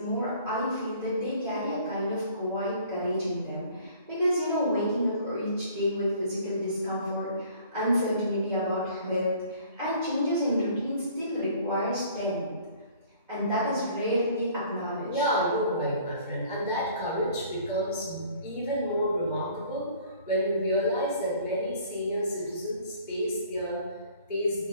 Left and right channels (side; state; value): both; inverted; correlation -0.53